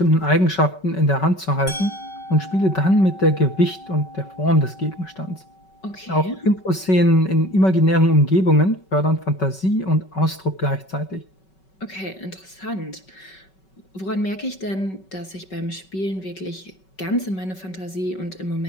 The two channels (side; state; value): right; late; 5.3 ms